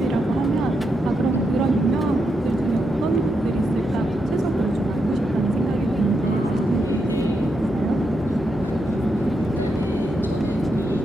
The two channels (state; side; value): normal; both; correlation 0.83